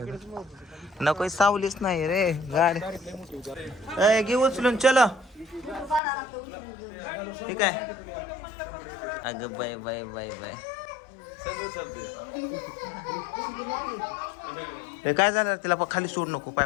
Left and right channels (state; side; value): drops out; right; at 6.0 s